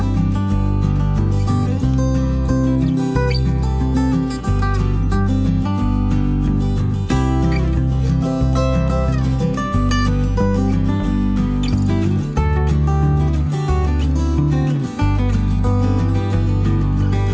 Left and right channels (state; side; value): identical; both; correlation 1.00